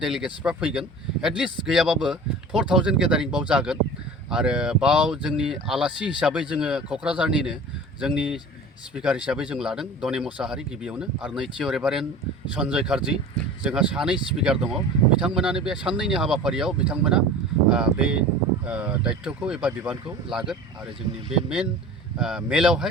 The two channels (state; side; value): normal; both; correlation 0.39